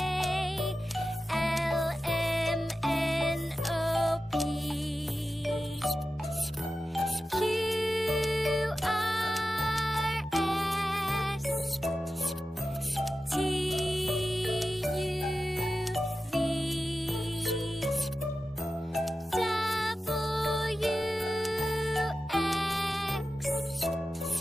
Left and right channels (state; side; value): normal; both; correlation 0.93